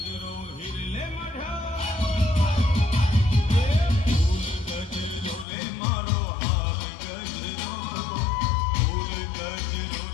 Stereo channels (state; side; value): drops out; right; at 5.5 s